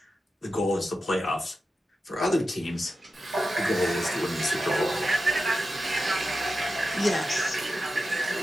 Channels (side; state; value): both; normal; correlation 0.91